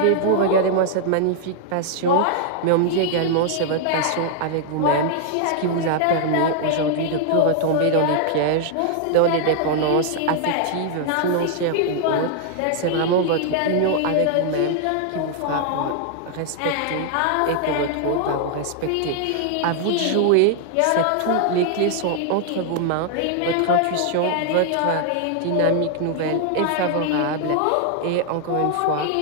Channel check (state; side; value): different; both; correlation -0.01